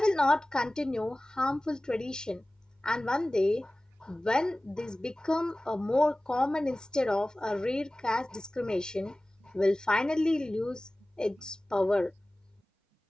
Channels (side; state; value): both; normal; correlation 0.98